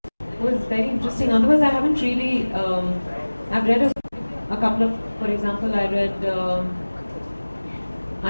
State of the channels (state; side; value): inverted; both; correlation -1.00